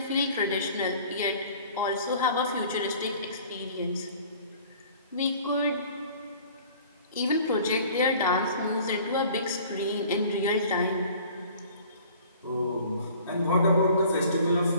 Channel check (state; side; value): inverted; both; correlation -0.49